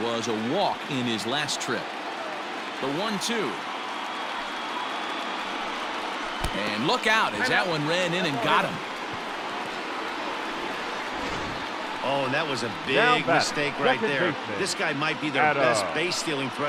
was a walk in his last trip. The 1-2. And look out as that one ran in and got him. Oh, and that was a big mistake right there. This guy might be their best base-stealing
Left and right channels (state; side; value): identical; both; correlation 1.00